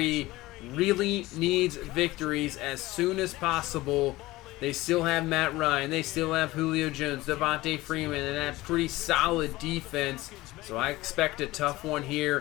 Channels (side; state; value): right; quieter; 18.8 dB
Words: really needs victories as soon as possible. They still have Matt Ryan. They still have Julio Jones, Devontae Freeman, and that pretty solid defense. So I expect a tough one